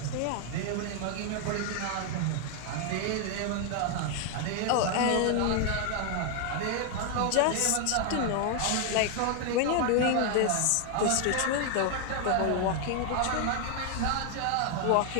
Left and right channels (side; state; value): both; different; correlation 0.00